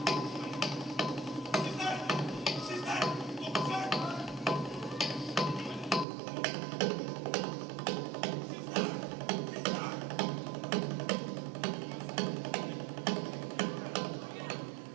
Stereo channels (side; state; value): left; drops out; at 6.1 s